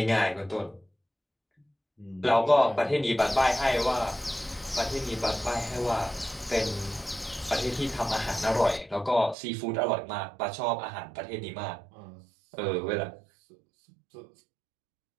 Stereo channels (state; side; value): drops out; left; at 9.3 s